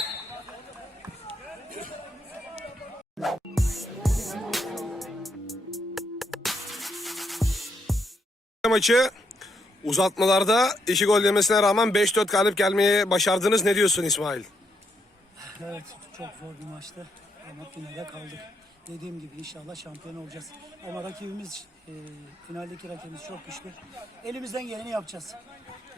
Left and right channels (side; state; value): both; normal; correlation 0.77